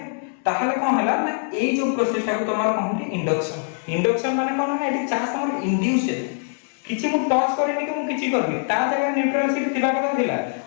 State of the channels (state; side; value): silent; right; 60 dB below the other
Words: ताहले कोन हला ना ए जो प्रोसेस को तमार कहूटी इंडक्शन माने कोन ना एटी चार्ज तमार इंड्यूस है किछि मु टच करेनी कि मु किछि करबी ता जगह न्यूट्रल शीट थिबा कथा थिला